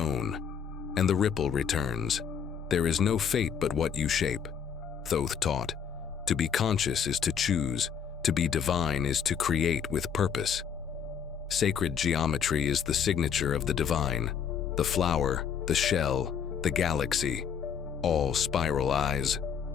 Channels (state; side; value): quieter; right; 7.5 dB